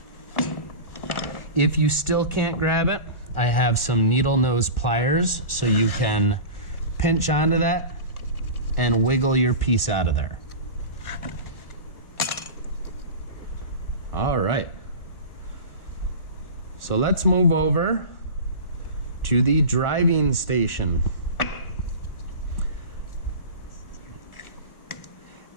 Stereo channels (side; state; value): right; late; 1.4 ms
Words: If you still can't grab it, I have some needle nose pliers so you can pinch onto that and wiggle your piece out of there. All right. So let's move over to the driving station.